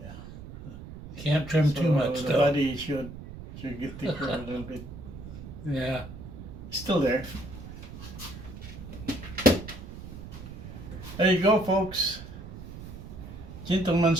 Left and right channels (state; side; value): noise; right; rumble, 12 dB below the sound